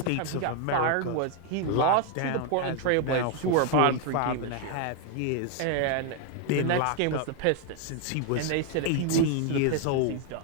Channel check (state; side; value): different; both; correlation 0.01